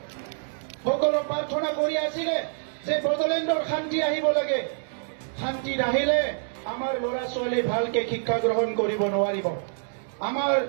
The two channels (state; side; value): silent; left; 61 dB below the other